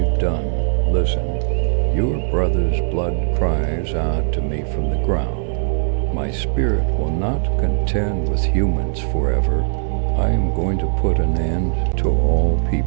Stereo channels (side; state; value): left; silent; digital silence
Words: done? Listen, your brother's blood cries out to me from the ground. My spirit will not contend with humans forever. I am going to put an end to all